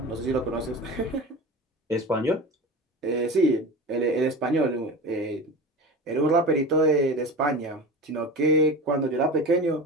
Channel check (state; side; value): normal; both; correlation 0.31